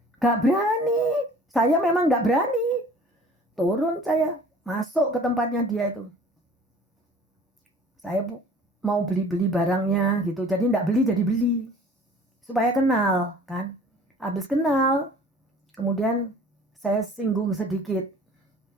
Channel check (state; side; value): normal; both; correlation 0.49